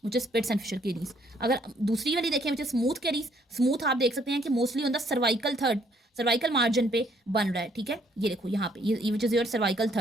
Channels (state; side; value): normal; both; correlation 0.66